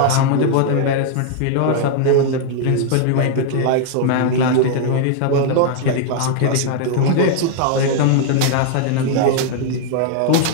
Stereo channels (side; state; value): both; different; correlation 0.00